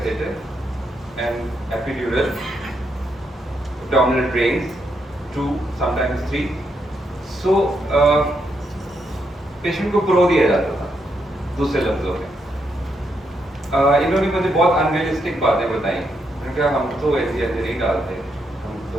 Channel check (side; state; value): both; normal; correlation 0.79